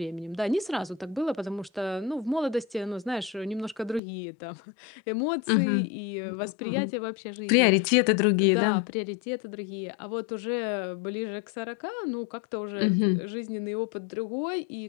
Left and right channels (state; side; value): drops out; right; at 4.0 s